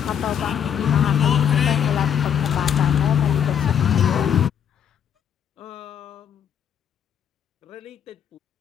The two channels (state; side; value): quieter; right; 8.6 dB